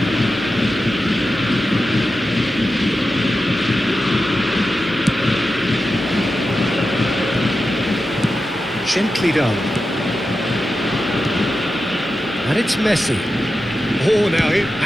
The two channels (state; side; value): normal; both; correlation 0.91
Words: Gently done. And it's Messi. Oh, now